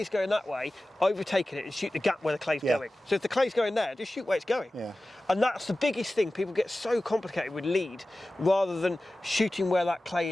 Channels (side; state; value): both; normal; correlation 0.96